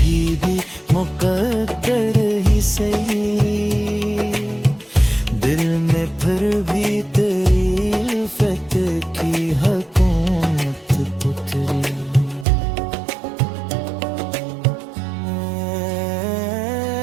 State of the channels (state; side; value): drops out; left; at 12.5 s